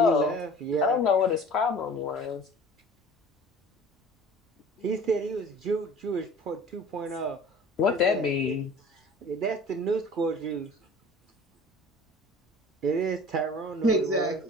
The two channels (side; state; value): both; normal; correlation 0.44